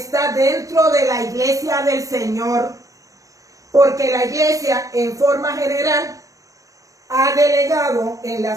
dentro de la iglesia del Señor, porque la iglesia en forma general ha delegado en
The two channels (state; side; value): late; left; 0.16 ms